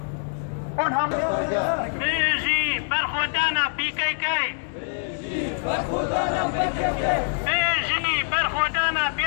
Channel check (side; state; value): right; silent; digital silence